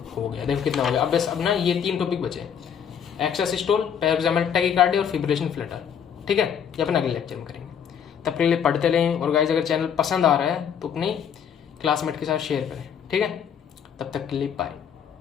हो गया. देखो कितना हो गया. अब बस अपना ये 3 टॉपिक बचे हैं, एक्स्ट्रा सिस्टोल, पैराक्सिमल टैकीकार्डिया और फिब्रिलेशन फ्लटर. ठीक है. ये अपन अगले लेक्चर में करेंगे. तब के लिए पढ़ते रहें. और गाइस अगर चैनल पसंद आ रहा है तो अपने क्लासमेट के साथ शेयर करें. ठीक है. तब तक के लिए बाय.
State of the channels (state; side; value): quieter; right; 8.0 dB